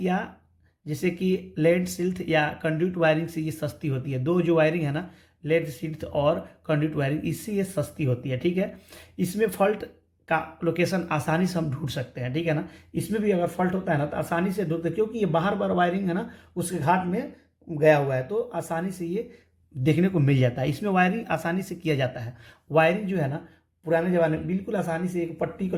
जैसे कि लेड सिल्थ या कंड्यूट वायरिंग से ये सस्ती होती है। दो जो वायरिंग है ना, लेड सिल्थ और कंड्यूट वायरिंग, इससे ये सस्ती होती है। ठीक है, इसमें फॉल्ट का लोकेशन आसानी से हम ढूंढ सकते हैं। ठीक है ना, इसमें भी अगर फॉल्ट होता है ना तो आसानी से ढूंढते, क्योंकि ये बाहर बार वायरिंग है ना उसके घाट में गया हुआ है, तो आसानी से ये देखने को मिल जाता है। इसमें वायरिंग आसानी से किया जाता है। वायरिंग जो है ना पुराने ज़माने में बिल्कुल आसानी से एक पट्टी को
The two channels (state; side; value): identical; both; correlation 1.00